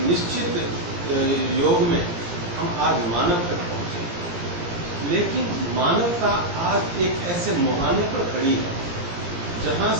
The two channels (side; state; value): left; late; 17 ms